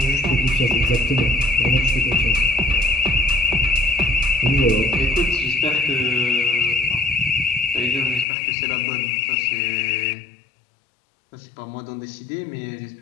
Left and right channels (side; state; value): right; drops out; at 8.2 s